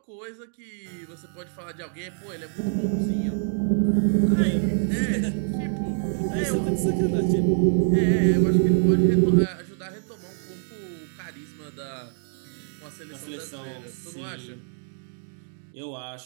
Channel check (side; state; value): left; silent; digital silence